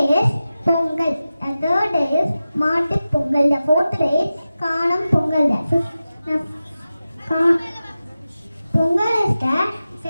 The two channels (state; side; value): inverted; both; correlation -0.94